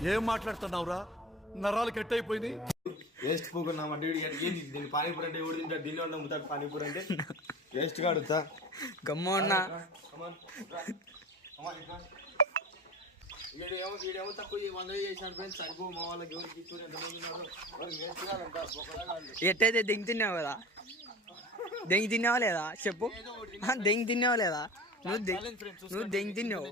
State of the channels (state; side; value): normal; both; correlation 0.35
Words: ఏం మాట్లాడుతున్నావురా? నరాలు కట్ అయిపోయింది. వేస్ట్ పూకున్నా దీన్ని పానీపూరి అంటే ఎవడు తింటాడు? దీనిలో ఉన్న ముతాడు పానీపూరి అంటే వేస్ట్ గా అడుగుతా. గమ్మ ఉన్నా వీడేమో తక్కువ 100 చేశాడు ఫ్రెండ్స్. సరిపో మా వాళ్ళకి ఎవరికి ఎట్టయితే దెంగి తిన్నావు కదా? దెంగి తిన్నావా లేదా చెప్పు? దెంగి తిన్నావా లేదా? నువ్వు దెంగి